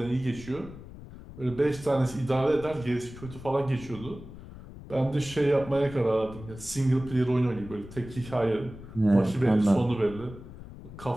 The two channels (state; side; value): noise; left; rumble, 15 dB below the sound